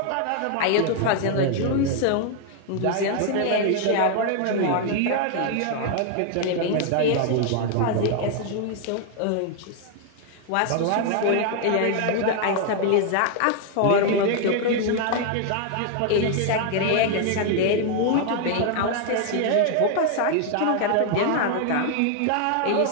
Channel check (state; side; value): different; both; correlation 0.00